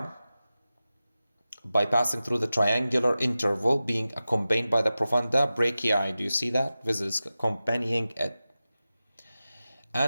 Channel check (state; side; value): inverted; both; correlation -0.95